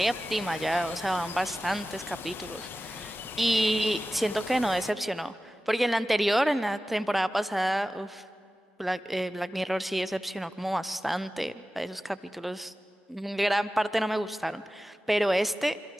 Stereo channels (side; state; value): both; normal; correlation 0.95